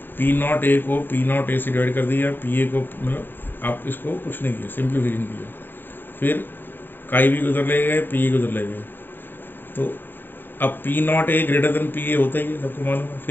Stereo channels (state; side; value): late; right; 0.093 ms